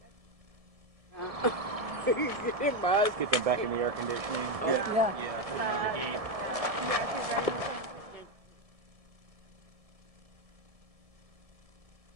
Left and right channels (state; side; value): late; left; 1.7 ms